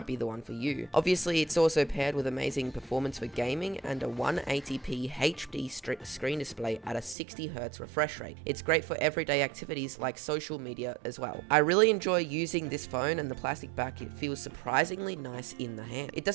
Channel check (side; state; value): left; drops out; at 7.2 s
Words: be the one for you. Obviously, it's also paired with amazing performance for gaming and a 180p HD screen display at a 60Hz refresh rate. It's great for everyday activities like social media as well. I really enjoy using this phone, and the plastic back, it feels surprisingly nice in the hand. It